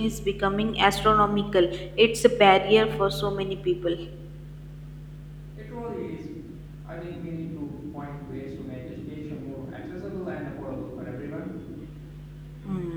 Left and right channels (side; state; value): both; identical; correlation 1.00